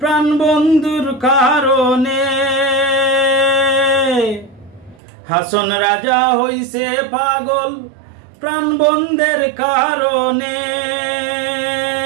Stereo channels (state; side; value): drops out; left; at 5.0 s